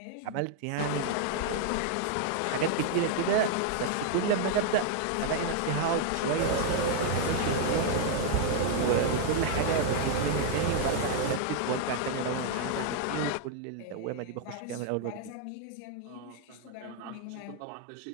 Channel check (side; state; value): both; different; correlation 0.00